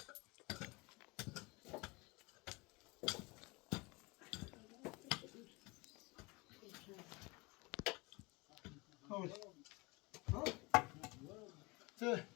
Hold. Hold. So,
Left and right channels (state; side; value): quieter; right; 25.9 dB